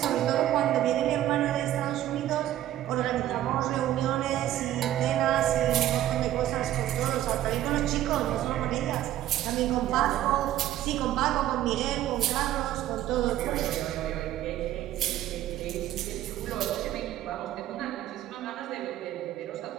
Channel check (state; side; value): quieter; left; 13.0 dB